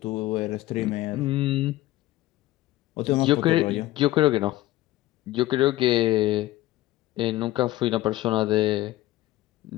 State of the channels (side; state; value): right; quieter; 16.5 dB